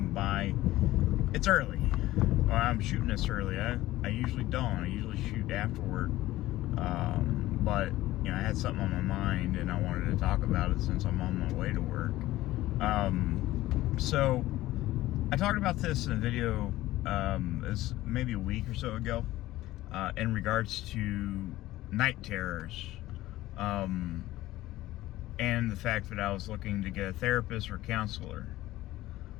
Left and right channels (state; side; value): quieter; right; 16.4 dB